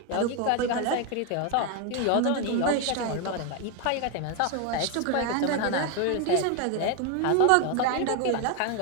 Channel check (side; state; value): both; different; correlation 0.01